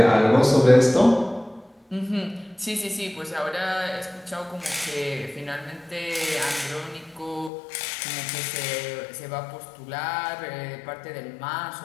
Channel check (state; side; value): drops out; right; at 7.5 s